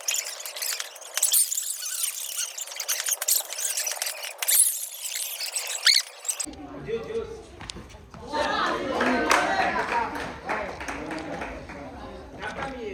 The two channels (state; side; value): identical; both; correlation 1.00